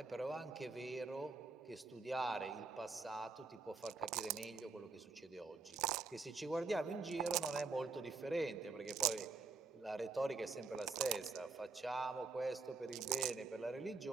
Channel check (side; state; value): left; quieter; 4.2 dB